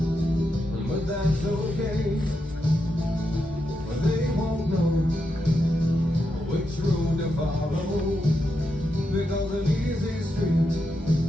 but that's okay. But they won't know which road to follow, because an easy street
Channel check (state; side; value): normal; both; correlation 0.85